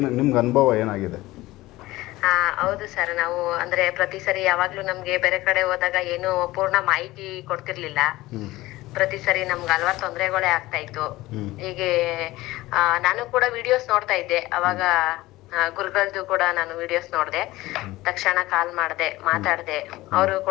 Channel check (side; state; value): right; quieter; 18.3 dB